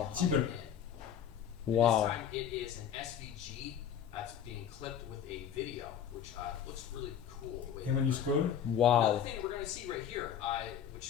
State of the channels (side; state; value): right; quieter; 8.8 dB